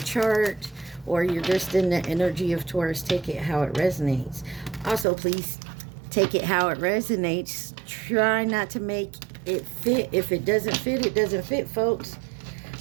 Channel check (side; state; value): left; drops out; at 5.1 s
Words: or you're just in the energy of Taurus. Take it how it resonates. Also, please take it how it resonates. Try not to make it fit. If it doesn't fit, it doesn't fit, folks.